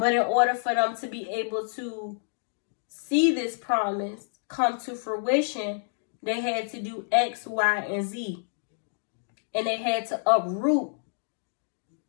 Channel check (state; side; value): silent; right; digital silence